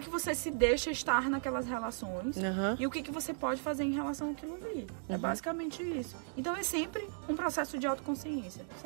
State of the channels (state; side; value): silent; left; digital silence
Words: que você se deixa estar naquelas relações e o que você pode fazer em relação àquilo ali. É basicamente isso. Então é sempre um processo de autoconsciência,